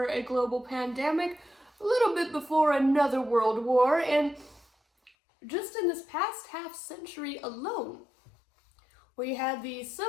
a global pandemic, a little bit before another world war. And just in this past half century alone, we had the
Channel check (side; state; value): right; drops out; at 5.1 s